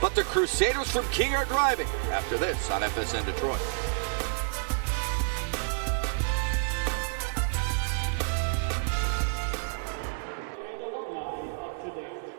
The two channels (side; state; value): left; silent; digital silence